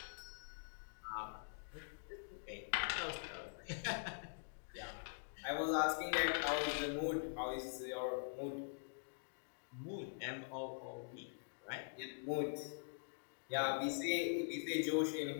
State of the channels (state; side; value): silent; right; digital silence